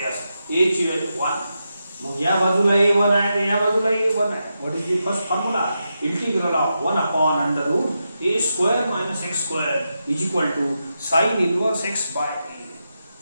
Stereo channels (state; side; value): inverted; both; correlation -0.87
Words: ए ची व्हॅल्यू 1, मग या बाजूला a1 आहे आणि या बाजूला a1 आहे. What is the first formula? Integral of 1 upon under root a square minus x square is equal to sine inverse x by a.